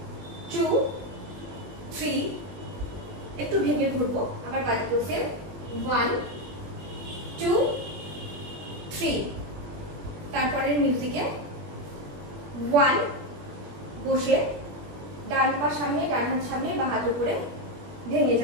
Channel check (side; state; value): left; late; 21 ms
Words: 2 3, একটু ভেঙে ঘুরবো, আবার বাদিকেও সেম 1 2 3। তারপরে মিউজিকে 1 বসে ডান পা সামনে, ডান হাত সামনে, বা হাত উপরে ভেঙে